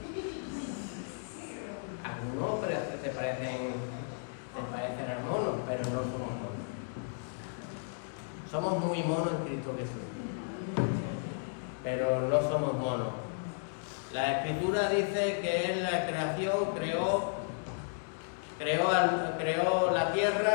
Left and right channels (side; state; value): right; silent; digital silence